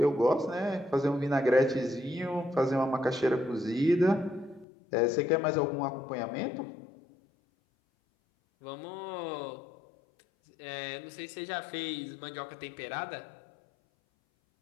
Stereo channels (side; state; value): right; drops out; at 4.7 s